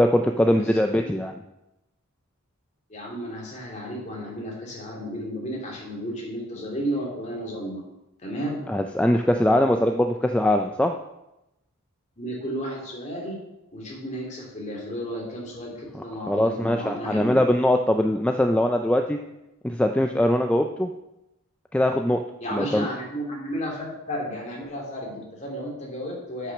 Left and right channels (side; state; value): both; normal; correlation 0.82